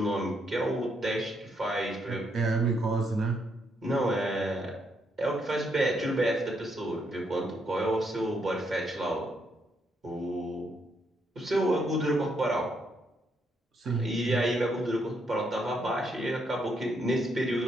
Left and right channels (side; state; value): both; normal; correlation 0.76